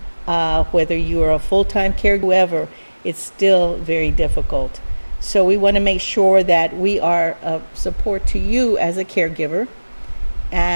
Whether you are a full-time caregiver, whoever, it's still very difficult. So we want to make sure that we are of support to you as a caregiver.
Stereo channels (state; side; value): inverted; both; correlation -1.00